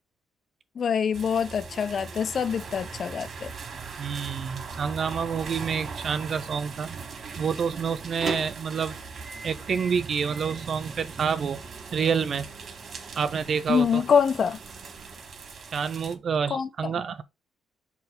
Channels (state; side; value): normal; both; correlation 0.75